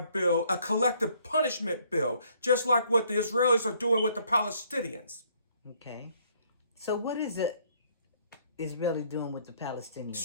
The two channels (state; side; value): inverted; both; correlation -0.65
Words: bill, a collective punishment bill, just like what the Israelis are doing with the Palestinians. Okay. So what is it Israeli doing with the Palestinians?